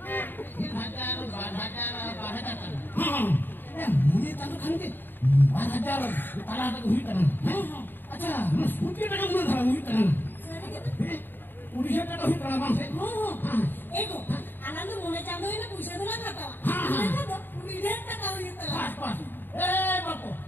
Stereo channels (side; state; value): right; late; 0.094 ms